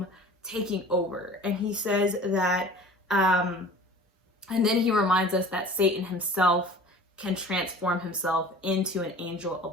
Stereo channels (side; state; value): both; normal; correlation 0.42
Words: taking over. And he says that, and then he reminds us that Satan himself can transform himself into an angel